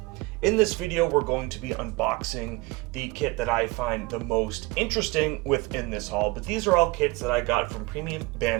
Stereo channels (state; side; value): quieter; left; 22.5 dB